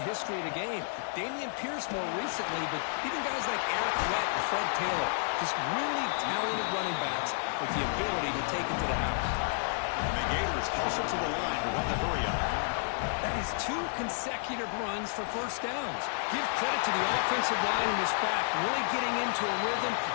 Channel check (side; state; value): right; silent; digital silence